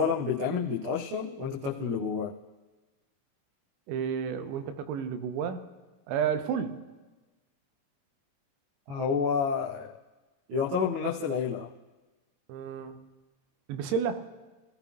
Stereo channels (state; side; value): late; left; 22 ms